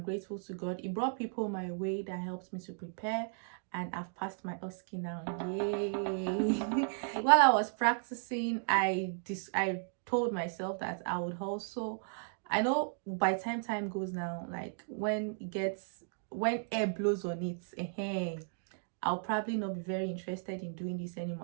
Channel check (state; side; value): silent; left; digital silence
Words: to God, He brought people my way that helped me to prepare, and I've passed my OSCE now. Yay! While I was practicing, I told myself that I would also, I know by time goes now, like when air blows on it, I'll probably not be very interested in doing this